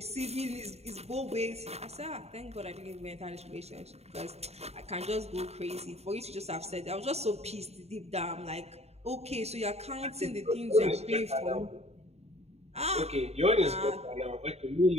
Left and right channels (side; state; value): left; late; 0.31 ms